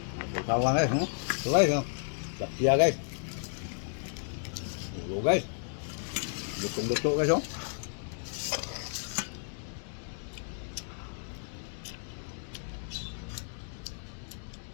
Tawang guys, no? Tuloy, no? Lapia guys. Ulo guys. Lutong-luto guys, oh.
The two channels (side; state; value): right; silent; digital silence